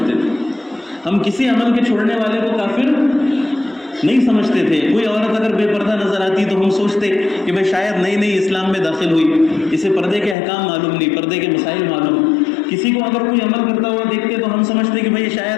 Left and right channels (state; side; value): drops out; right; at 10.4 s